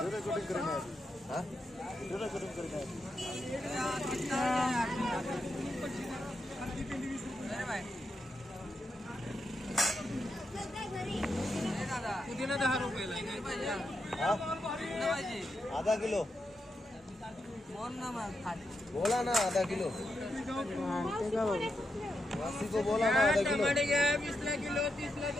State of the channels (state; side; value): normal; both; correlation 0.84